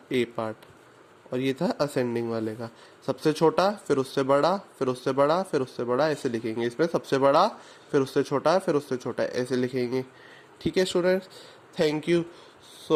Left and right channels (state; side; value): identical; both; correlation 1.00